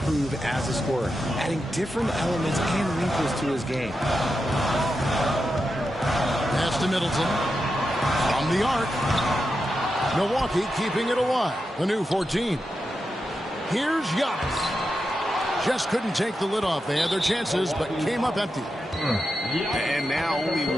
as a scorer, adding different elements and wrinkles to his game. Pass to Middleton. From the arc. Milwaukee keeping it alive. The new 14. Here's Giannis. Just couldn't take the lid off. They had their chances, but came up empty. And now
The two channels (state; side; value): normal; both; correlation 0.88